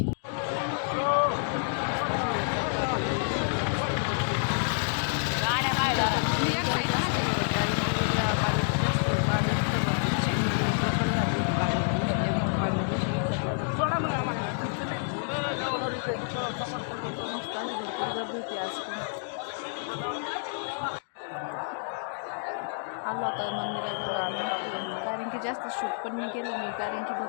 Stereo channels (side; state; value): right; silent; digital silence